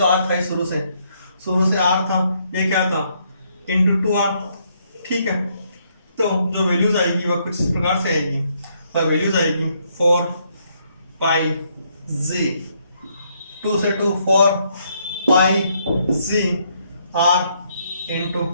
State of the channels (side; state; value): both; inverted; correlation -0.72